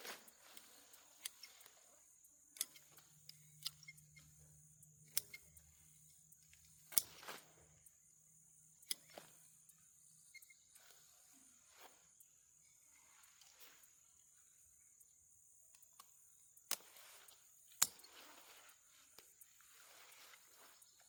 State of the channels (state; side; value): identical; both; correlation 1.00